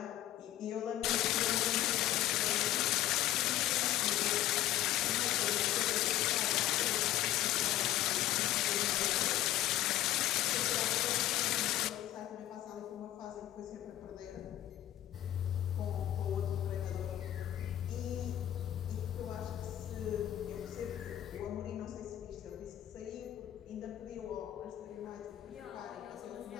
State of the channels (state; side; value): quieter; right; 13.4 dB